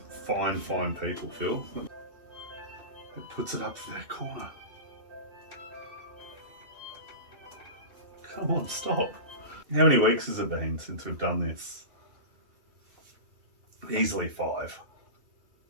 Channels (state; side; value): late; left; 2.7 ms